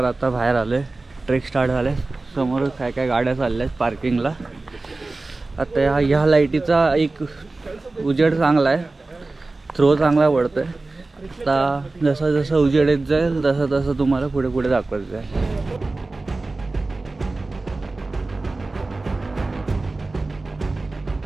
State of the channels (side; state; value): left; quieter; 3.3 dB